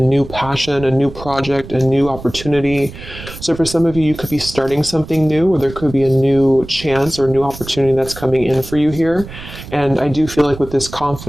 passion, a new project, a new opportunity. So for some of you, you could be starting something new, or there could be a new chance or new opportunity that's coming in for you here. And I do feel like with this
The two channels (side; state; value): right; noise; rumble, 14 dB below the sound